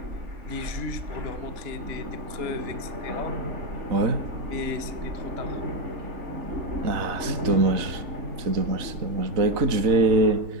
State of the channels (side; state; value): left; late; 3.9 ms